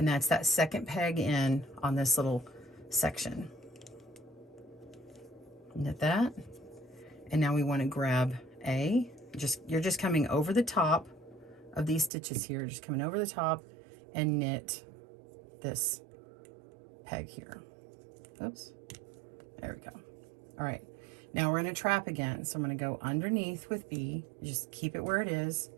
that's that second peg in on this little section. Knit that. And now we want to grab A. You're just coming over the top of these stitches here, just coming over the top and knit this peg here. Oops. There we go. All right. Now we're going to trap again. So I'm going to go underneath with B. Just keep it where it is.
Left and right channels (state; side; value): drops out; left; at 12.1 s